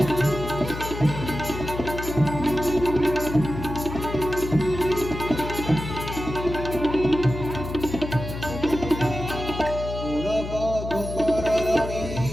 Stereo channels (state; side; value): noise; left; hum, 7 dB below the sound